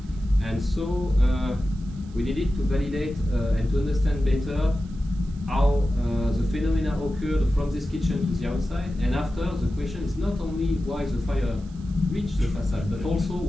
And so we needed to validate and to understand better how the phenomena occurred from this kitchen to the outside. And after, the question is not only why the fire reached the facade, but also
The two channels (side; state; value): right; noise; hiss, 28 dB below the sound